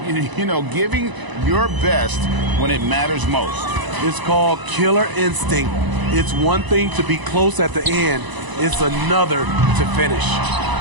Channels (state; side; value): late; left; 1.0 ms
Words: You know, giving your best when it matters most. It's called killer instinct. It's one thing to be close at the end. It's another to finish.